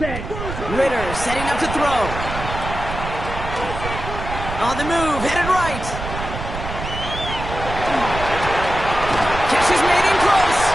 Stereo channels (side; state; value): right; noise; rumble, 7 dB below the sound